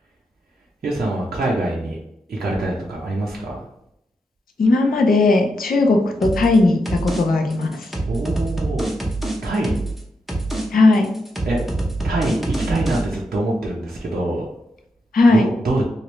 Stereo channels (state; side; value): normal; both; correlation 0.84